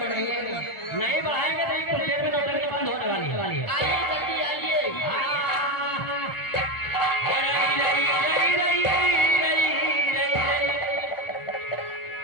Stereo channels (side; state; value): right; late; 1.4 ms